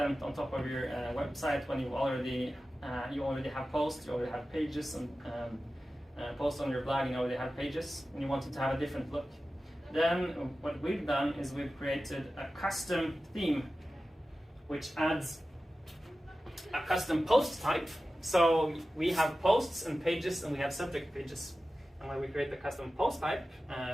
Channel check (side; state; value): both; normal; correlation 0.95